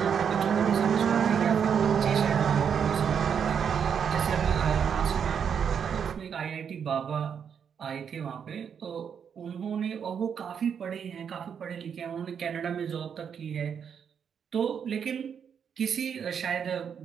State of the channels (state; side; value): quieter; left; 7.4 dB